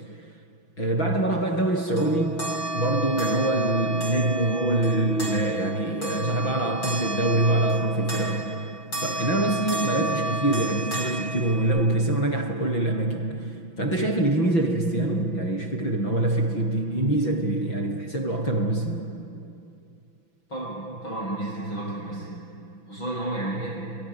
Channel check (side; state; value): right; late; 6.0 ms